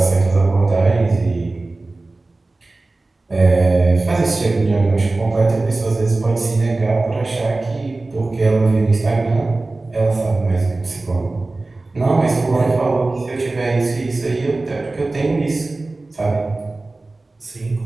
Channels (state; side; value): quieter; left; 3.2 dB